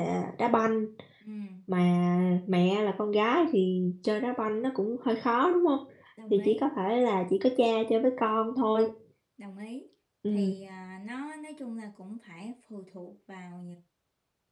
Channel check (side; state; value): both; identical; correlation 1.00